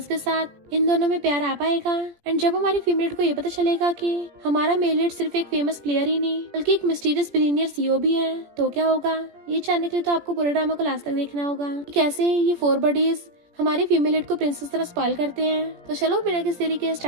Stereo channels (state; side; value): late; left; 17 ms